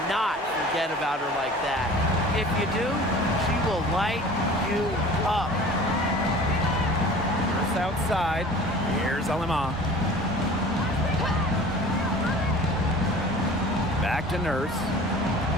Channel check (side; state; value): both; normal; correlation 0.43